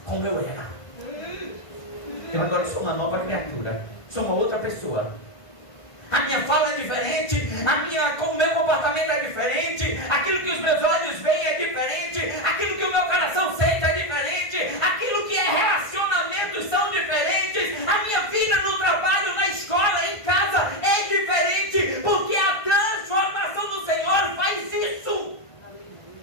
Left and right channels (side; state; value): right; late; 1.5 ms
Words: como eu era. Eu agora sou uma nova criatura. Sou uma outra pessoa. A minha fala é diferente, o meu comportamento é diferente, aquilo que os meus olhos veem é diferente, aquilo que o meu coração sente é diferente, aquilo que é relacionamentos são diferentes, a minha vida no trabalho, na escola, em casa é diferente, porque a transformação do Senhor faz isso.